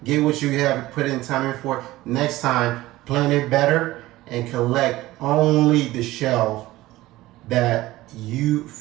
Get what you have put in time in for. Next time, plan it better and collect only the shelf that you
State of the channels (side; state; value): left; quieter; 17.4 dB